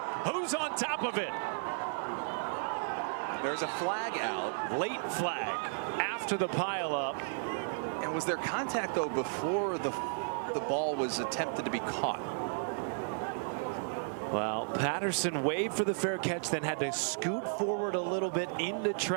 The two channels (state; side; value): silent; left; 55 dB below the other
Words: Who's on top of it? There's a flag out. Late flag after the pileup. And was there contact, though, before the ball was attempted to be caught? Well, Patterson waved for the fair catch, then had to scoot forward a little bit into